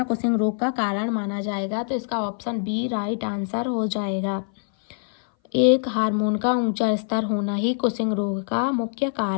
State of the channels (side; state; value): right; silent; 59 dB below the other